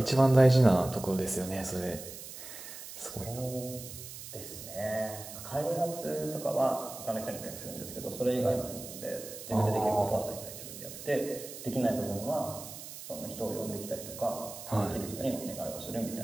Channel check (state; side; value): noise; right; hiss, 12 dB below the sound